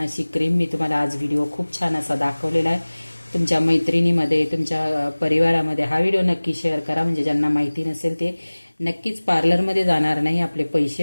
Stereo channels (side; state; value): both; inverted; correlation -1.00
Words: अशी क्रीम मी तुम्हाला आज व्हिडिओ खूप छान असा दाखवलेला आहे. तुमच्या मैत्रिणीमध्ये, तुमच्या परिवारामध्ये हा व्हिडिओ नक्की शेअर करा, म्हणजे ज्यांना माहिती नसेल ते नक्कीच पार्लरमध्ये जाणार नाही, आपले